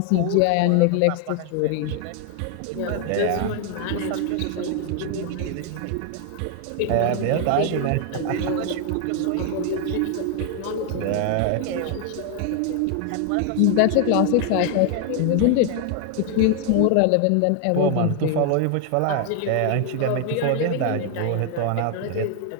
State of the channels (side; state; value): both; different; correlation 0.00